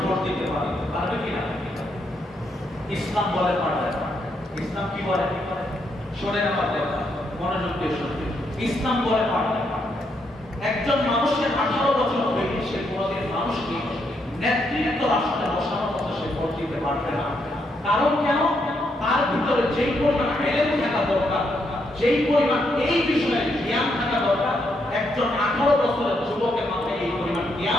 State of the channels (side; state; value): both; normal; correlation 0.77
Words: ভোট দিতে পারবে কিনা? ইসলাম বলে পারবে। ইসলাম কি বলে? শোনেন আমার কথা, মনোযোগ দিয়ে শুনবেন। ইসলাম বলে পারবে একজন মানুষের 18 বছর হয়ে সে কোনোদিন মানুষকে নেতৃত্ব রাষ্ট্রে বসানোর মতো সে ভোট দিতে পারবে না। কারণ কেন? তার ভিতরে যেই পরিমাণ এলেম থাকা দরকার, যেই পরিমাণ এই বিষয়ে জ্ঞান থাকা দরকার, একজন 18 বছরের যুবকের মাথায় এই পরিমাণ